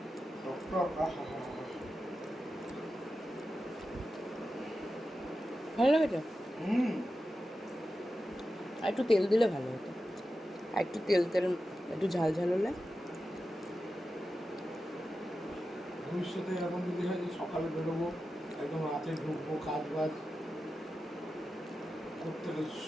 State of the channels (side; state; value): both; normal; correlation 0.91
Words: ভালো লেগেছে। আর একটু তেল দিলে ভালো হতো, আর একটু তেল একটু ঝাল ঝাল হলে। ভবিষ্যতে এরকম যদি হয় যে সকালে বেরোবো, একদম রাতে ঢুকবো, কাজ বাজ করতে